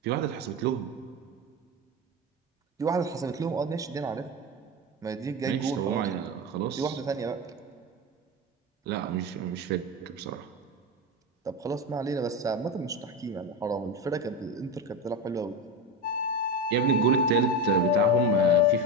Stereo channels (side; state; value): both; normal; correlation 0.19